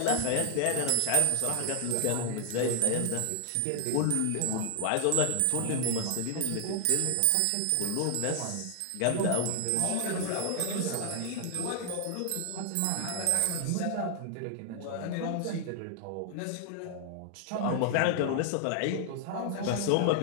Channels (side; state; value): both; different; correlation 0.00